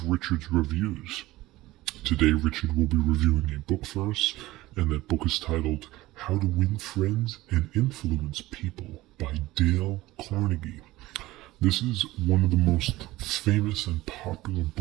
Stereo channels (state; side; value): quieter; left; 18.0 dB